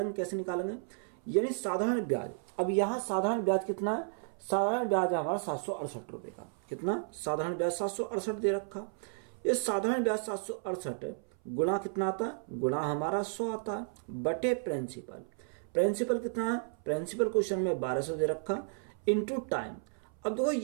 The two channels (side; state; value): left; silent; 56 dB below the other